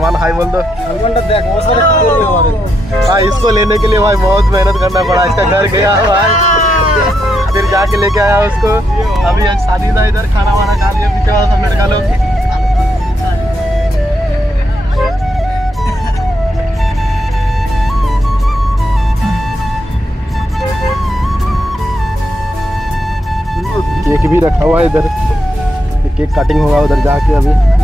हाई बोल दो। सलमान तो देख बहुत सारे भाई इसको लेने के लिए भाई बहुत मेहनत करना पड़ा, इसका घर गया भाई फिर जाके लेके आया उसको। अभी शादी था इधर, खाना वाना खा लिया पीछे वाला सब लड़का लोग। केक भी रखा हुआ है इधर, केक कटिंग होगा उधर जाके। अभी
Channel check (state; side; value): normal; both; correlation 0.80